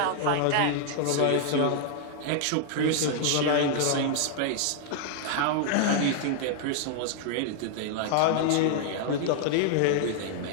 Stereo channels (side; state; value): both; different; correlation -0.01